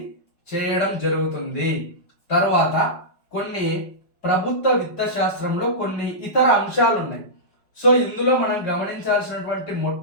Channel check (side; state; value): right; late; 5.2 ms